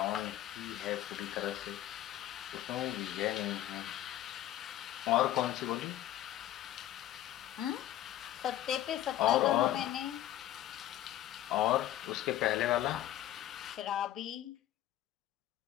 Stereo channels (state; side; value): quieter; right; 13.3 dB